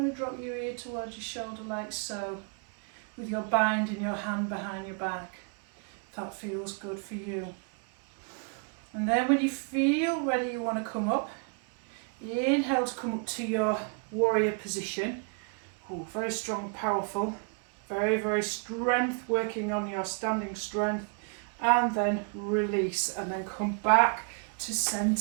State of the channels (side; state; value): left; quieter; 39.4 dB